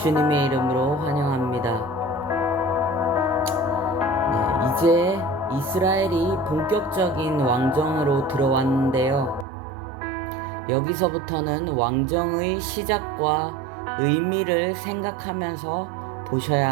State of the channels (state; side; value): drops out; left; at 9.5 s